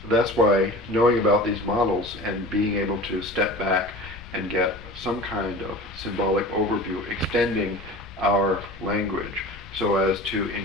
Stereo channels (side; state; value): left; noise; rumble, 17 dB below the sound